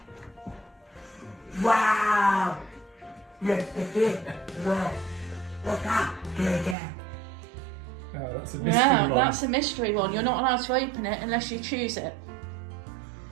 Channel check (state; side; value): drops out; left; at 6.8 s